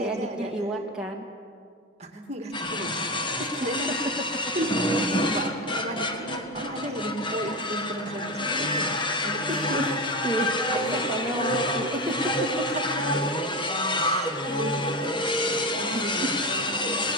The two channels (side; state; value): both; normal; correlation 0.20